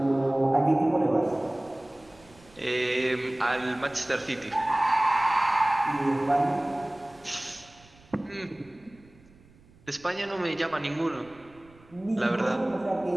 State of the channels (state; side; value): noise; right; rumble, 27 dB below the sound